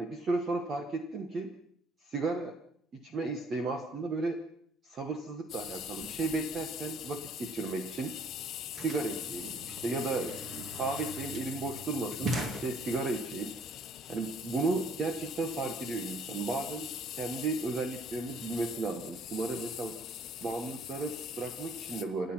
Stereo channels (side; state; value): both; normal; correlation 0.60